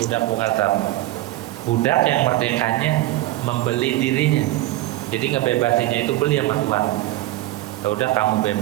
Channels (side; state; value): left; quieter; 16.4 dB